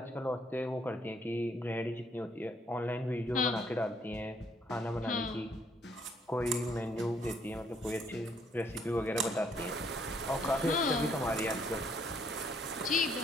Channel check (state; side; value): normal; both; correlation 0.67